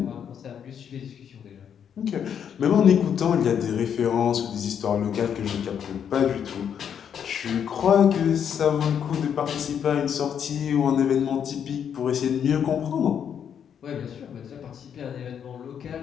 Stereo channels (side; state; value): right; quieter; 8.3 dB